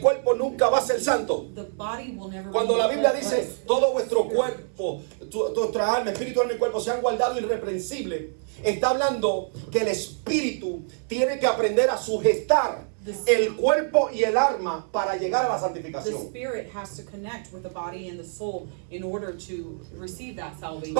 nunca va a ser santo. The body will never Cuando be la Biblia us. dice todo vuestro cuerpo, nuestra alma, espíritu, alma y cuerpo sean guardados irreprensibles, está hablando que el espíritu tiene que aprender a sujetar el cuerpo y el alma para llegar a la The santificación. spirit has to connect with the body and the soul in order to receive that salvation.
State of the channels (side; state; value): left; silent; 61 dB below the other